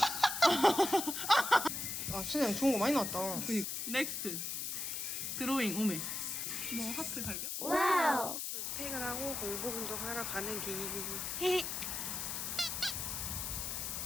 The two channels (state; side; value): noise; left; hiss, 3 dB below the sound